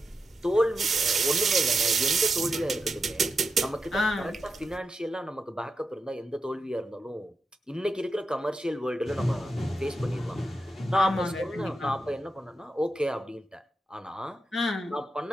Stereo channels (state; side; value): normal; both; correlation 0.87